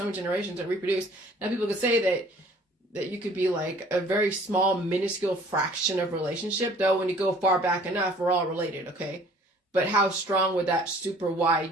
many generations that reproduce. Now people could say that you could be like a very small, minuscule fraction of relationship, though when you go far back enough, we're all related, okay? But how strong would that super Y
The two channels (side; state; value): both; normal; correlation 0.53